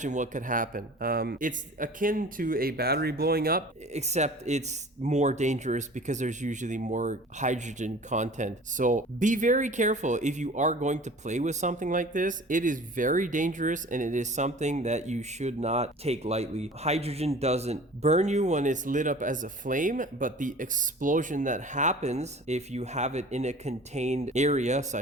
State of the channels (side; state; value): both; normal; correlation 0.44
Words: what could happen. It's akin to a battery blowing up, except it's more dangerous because there's usually more hydrogen content. So be very careful if you are going to play with something like this. It is very dangerous, and it is something that you should not take lightly. Hydrogen doesn't burn you when it's lit up as a flame, but the explosion that happens if you have it in a contained area,